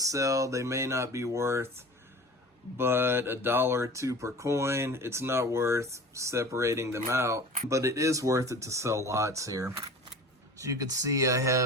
They may not be worth but $1 or $2 per coin. It's not worth separating them out, but it is worth it to sell lots here. So you can see I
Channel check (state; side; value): normal; both; correlation 0.39